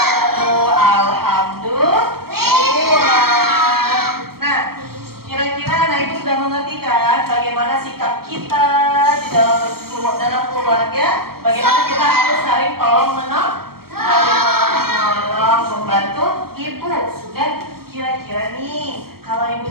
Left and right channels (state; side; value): late; left; 0.94 ms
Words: Alhamdulillah. Nah, kira-kira anak ibu sudah mengerti kan bagaimana sikap kita di dalam keluarga? Bagaimana kita harus saling tolong menolong, membantu ibu. Dan kira-kira nih, kalau ibu